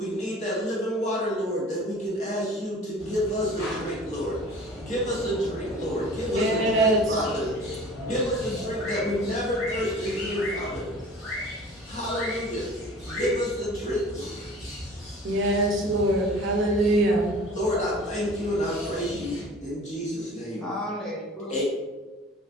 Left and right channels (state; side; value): normal; both; correlation 0.44